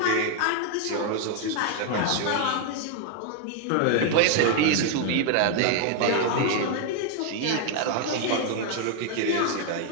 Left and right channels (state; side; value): different; both; correlation 0.00